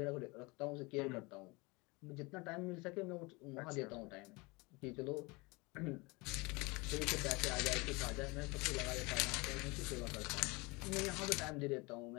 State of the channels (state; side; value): quieter; right; 25.9 dB